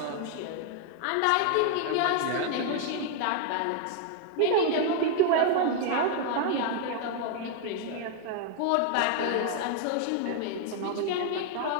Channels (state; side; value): different; both; correlation 0.00